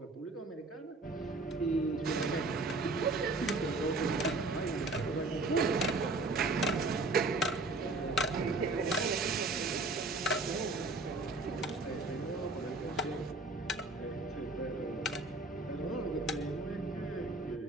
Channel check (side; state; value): left; quieter; 3.2 dB